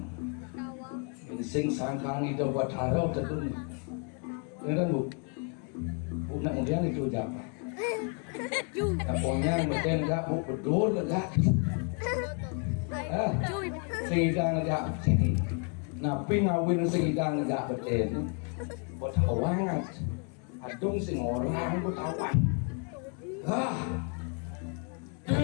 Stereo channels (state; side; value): quieter; right; 39.6 dB